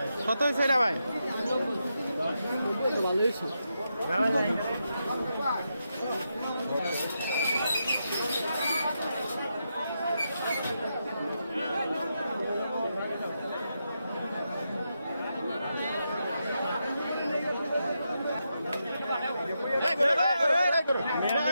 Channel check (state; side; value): inverted; both; correlation -0.85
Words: কত হয়েছে রে ভাই? ভালো হয়েছে।